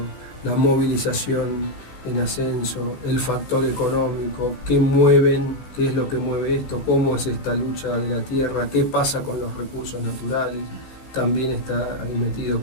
la movilización en ascenso, el factor económico, qué es lo que mueve esto, cómo es esta lucha de la tierra, qué pasa con los recursos naturales, también está ahí metido,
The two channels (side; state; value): right; late; 15 ms